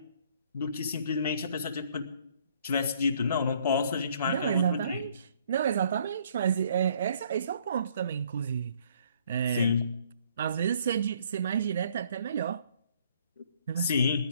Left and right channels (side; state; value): both; inverted; correlation -0.62